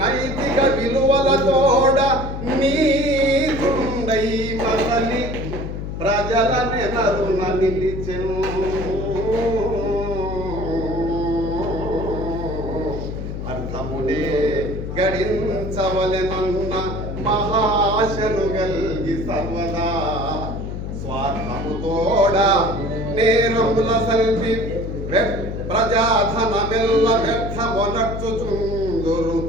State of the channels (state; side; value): noise; left; hum, 6 dB below the sound